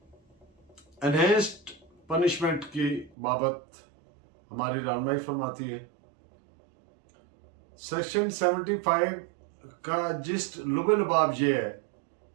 एनहेंस्ड पनिशमेंट की बाबत हमारी रहनुमाई फरमाती है। सेक्शन 75 का जिस्ट लुबे लुबाब ये है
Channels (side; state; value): left; drops out; at 3.1 s